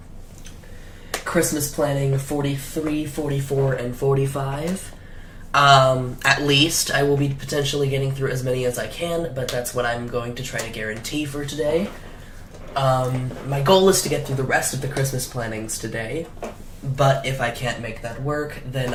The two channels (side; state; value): both; identical; correlation 1.00